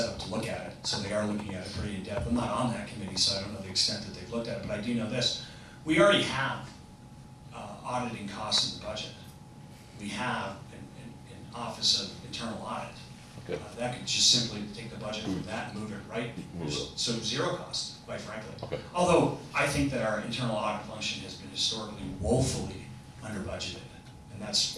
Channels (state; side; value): identical; both; correlation 1.00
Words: up to look at it, so they are looking at it pretty in depth. I'm not on that committee, so I don't know the extent that they've looked at it, but I do know this. We already have auditing costs in the budget. We have an Office of Internal Audit. Okay. That could just simply take the budget from that and move it right, so zero cost, quite frankly. Okay. Although I think that our internal audit function has been historically woefully under budgeted, and that's